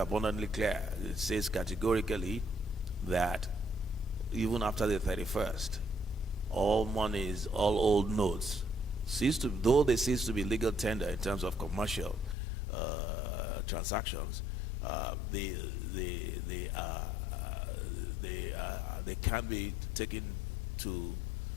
clear, it says categorically that even after the 31st, all monies, all old notes, though they cease to be legal tender in terms of commercial transactions, they can be taken to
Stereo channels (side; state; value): right; drops out; at 12.4 s